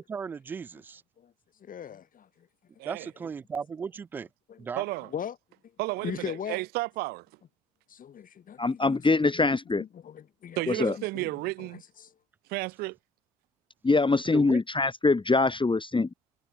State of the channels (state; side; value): normal; both; correlation 0.57